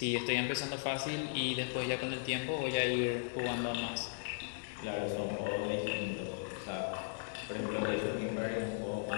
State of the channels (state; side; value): silent; right; digital silence